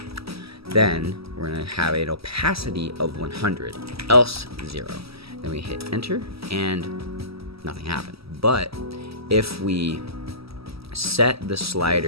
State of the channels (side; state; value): left; late; 0.76 ms